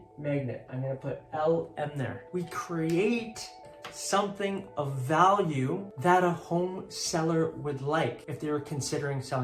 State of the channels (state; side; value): identical; both; correlation 1.00